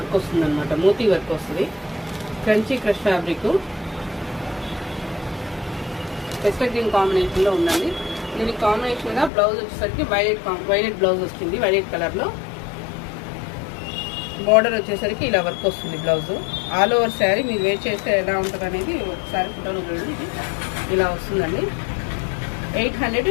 మోతీ వర్క్ వస్తుంది. Kanchi fresh fabric pastel green కాంబినేషన్లో ఉందండి. దీనికి కాంబినేషన్గా బ్లౌజ్ వచ్చేసరికి వైలెట్ బ్లౌజ్ వస్తుంది. వైలెట్ కలర్లో బార్డర్ వచ్చేసరికి ఇలా వర్క్ వస్తుంది. బ్లౌజ్ ఆల్ ఓవర్ శారీ మీరు వేర్ చేస్తే ఎలా ఉంటుంది అనేది ఒకసారి ఫోటోలో చూడండి. ఇలా వస్తుందండి.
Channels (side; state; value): right; drops out; at 9.3 s